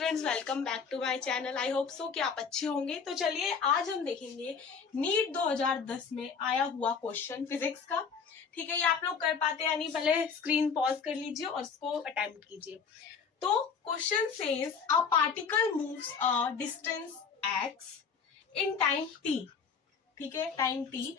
welcome back to my channel. I hope so कि आप अच्छे होंगे। तो चलिए आज हम देखेंगे नीट 2010 में आया हुआ क्वेश्चन फिजिक्स का। ठीक है, ये आप लोग कर पाते हैं नहीं, पहले स्क्रीन पॉज कर लीजिए और इसको अटेम्प्ट कीजिए। तो question says a particle moves a distance x in time t। ठीक है, time t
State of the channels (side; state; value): right; quieter; 5.9 dB